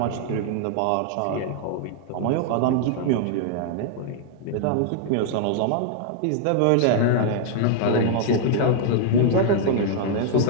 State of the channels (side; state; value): both; different; correlation -0.01